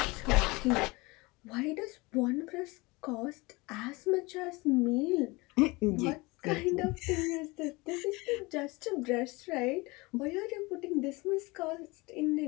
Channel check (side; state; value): right; quieter; 24.3 dB